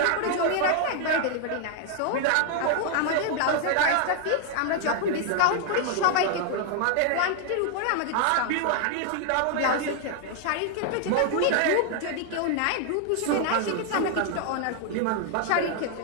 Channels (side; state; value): both; different; correlation 0.00